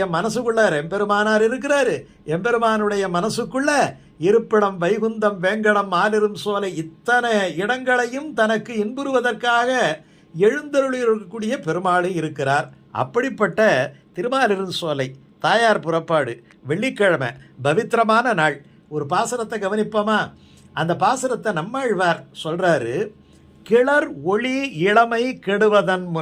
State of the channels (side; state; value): both; identical; correlation 1.00